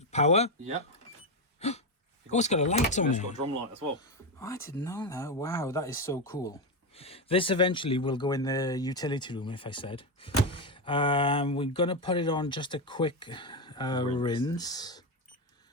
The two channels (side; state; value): both; normal; correlation 0.11